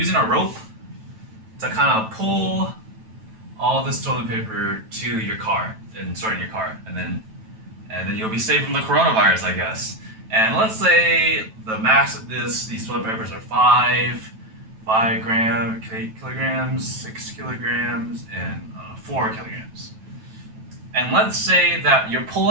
a rope to kind of pull all this toilet paper to your car and store it in your car, and then you'll be safe from the coronavirus, I guess. And let's say the mass of these toilet papers are 5 kilograms, 6 kilograms, and 4 kilograms. And let's say that you're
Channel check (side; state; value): left; late; 9.1 ms